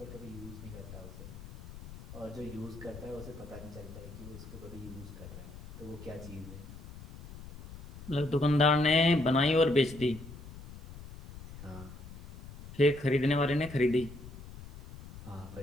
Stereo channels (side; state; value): left; noise; rumble, 14 dB below the sound